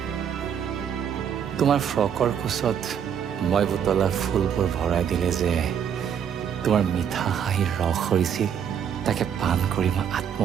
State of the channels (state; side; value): quieter; left; 8.3 dB